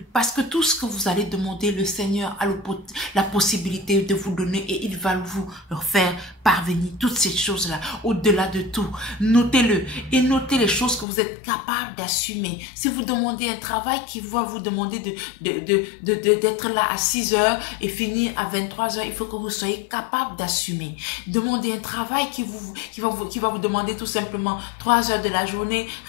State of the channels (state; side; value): drops out; right; at 11.1 s